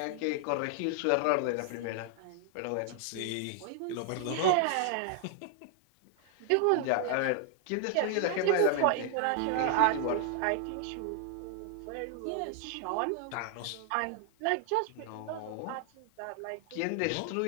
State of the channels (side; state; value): both; different; correlation 0.00